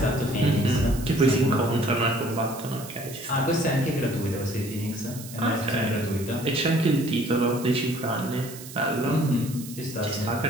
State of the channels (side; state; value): right; noise; hiss, 14 dB below the sound